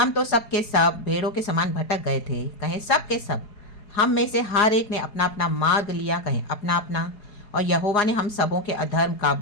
तो सब के सब भेड़ों के समान भटक गए थे, कहें सब के सब। हम में से हर एक ने अपना अपना मार्ग लिया, कहें अपना अपना। और यहोवा ने हम सबों के अधर्म का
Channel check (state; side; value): late; right; 4.8 ms